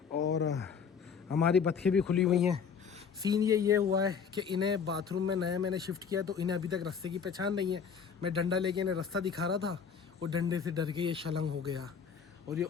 और हमारी बतखें भी खुली हुई हैं। सीन ये हुआ है कि इन्हें बाथरूम में नया मैंने शिफ्ट किया तो इन्हें अभी तक रास्ते की पहचान नहीं है। मैं डंडा लेके इन्हें रास्ता दिखा रहा था और डंडे से डर के ये शलंग हो गया और ये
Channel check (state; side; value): quieter; right; 6.6 dB